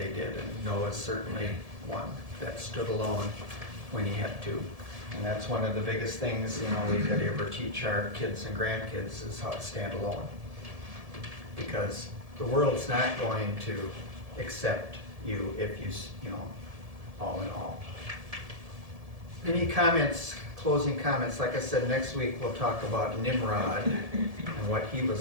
did. And Noah's certainly one that stood alone when he had to. And that's one of the biggest things, you know, we could ever teach our kids and grandkids is how to stand alone. Because the world's not going to accept you if you know, all in all. Any comments, closing comments? Like I said, next week we'll talk about Nimrod and what he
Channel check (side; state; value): left; late; 1.7 ms